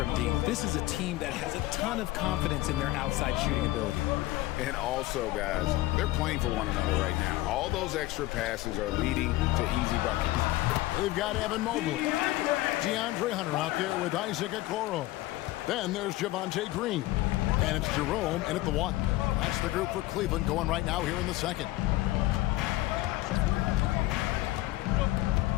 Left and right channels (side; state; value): right; quieter; 17.5 dB